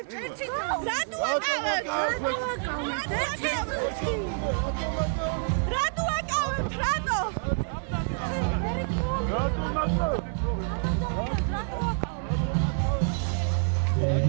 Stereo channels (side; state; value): left; silent; 60 dB below the other